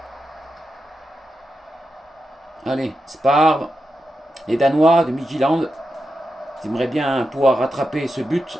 Allez, Spar. Les Danois de Midtjylland. Ils aimeraient bien pouvoir rattraper ce but.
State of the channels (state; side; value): normal; both; correlation 0.88